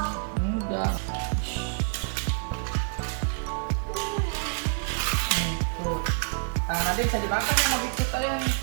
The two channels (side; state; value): left; silent; digital silence